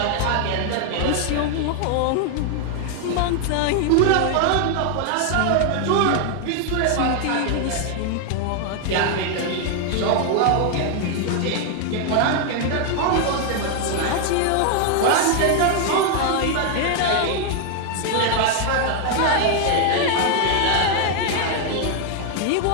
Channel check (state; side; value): different; both; correlation 0.00